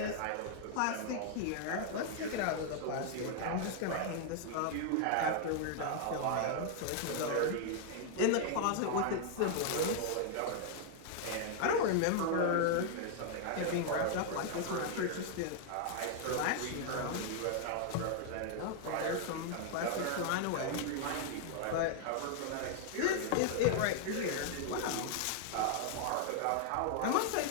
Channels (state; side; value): different; both; correlation 0.00